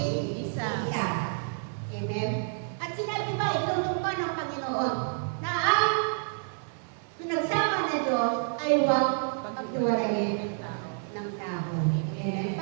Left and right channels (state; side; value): silent; left; 59 dB below the other